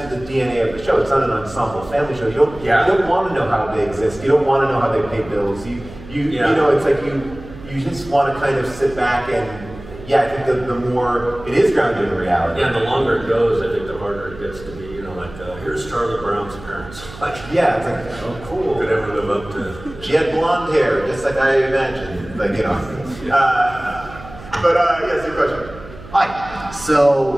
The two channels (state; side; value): noise; right; hum, 16 dB below the sound